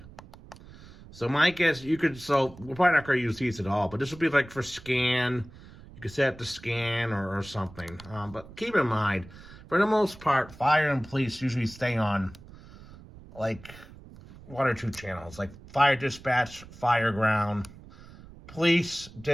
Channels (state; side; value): noise; right; rumble, 19 dB below the sound